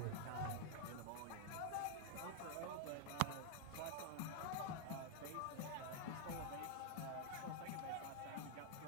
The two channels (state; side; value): different; both; correlation 0.00